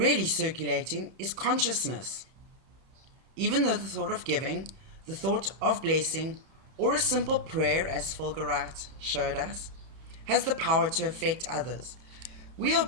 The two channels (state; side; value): late; left; 31 ms